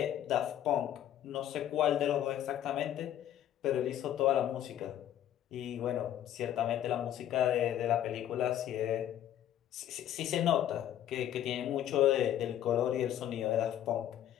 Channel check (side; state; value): right; quieter; 11.3 dB